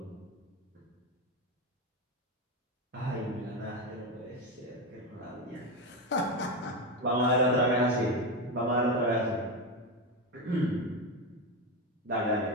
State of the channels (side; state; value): both; normal; correlation 0.14